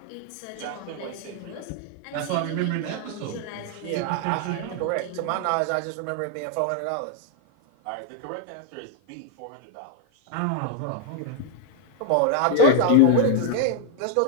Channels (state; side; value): different; both; correlation 0.01